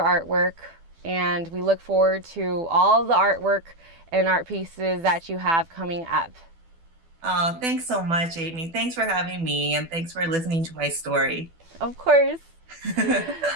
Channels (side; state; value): left; late; 12 ms